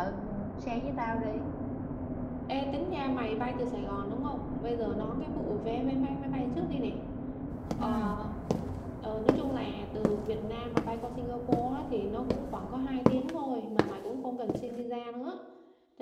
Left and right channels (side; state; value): both; identical; correlation 1.00